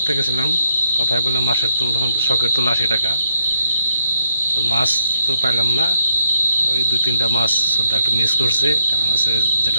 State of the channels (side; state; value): both; inverted; correlation -0.75